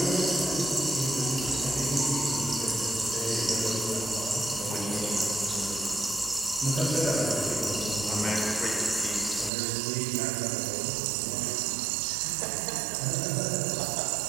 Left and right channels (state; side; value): drops out; left; at 9.5 s